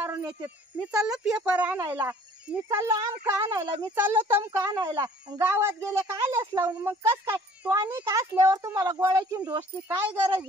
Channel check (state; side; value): normal; both; correlation 0.53